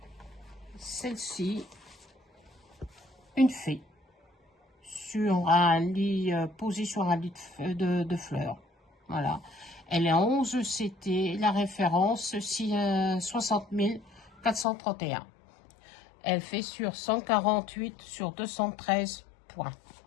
celle-ci, une fée. Sur un lit, posé sur un lit de fleurs. Voilà. Elle est en 11 CT, la référence 60 431. Elle fait sur 148 sur 213 points.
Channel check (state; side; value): drops out; right; at 14.7 s